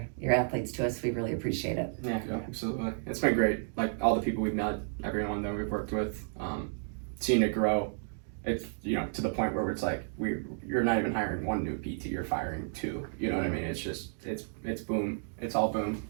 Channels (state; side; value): silent; left; digital silence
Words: athletes to us. We really appreciate it. Yeah, absolutely. It's been great. Like all the people we've met, everyone that we've worked with, seeing it grow. It's to the point where it's like you're not even hiring 1 new PT, you're firing 2. You know what I mean? It's just it's boom. It's all boom.